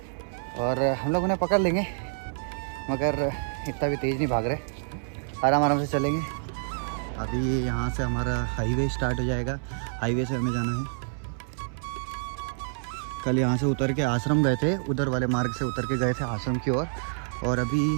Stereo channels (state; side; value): silent; left; 60 dB below the other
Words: और हम लोग उन्हें पकड़ लेंगे, मगर इतना भी तेज़ नहीं भाग रहे, आराम आराम से चलेंगे। अभी यहाँ से हमारा हाईवे स्टार्ट हो जाएगा। हाईवे से हमें जाना है। कल यहाँ से उतर के आश्रम गए थे, उधर वाले मार्ग से उतर के गए थे आश्रम की ओर, और अभी